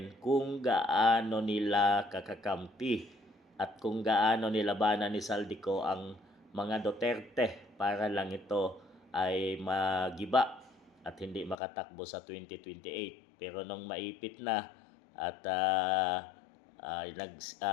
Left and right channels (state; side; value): drops out; right; at 11.6 s